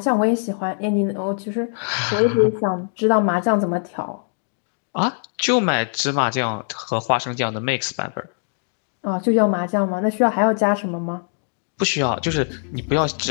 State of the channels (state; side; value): silent; right; digital silence